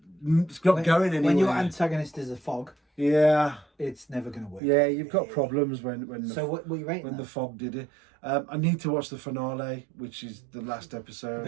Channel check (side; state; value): left; drops out; at 4.6 s